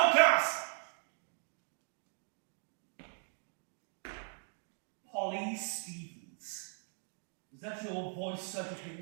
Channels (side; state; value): left; silent; 52 dB below the other